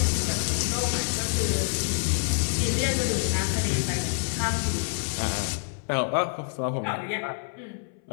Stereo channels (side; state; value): right; silent; 60 dB below the other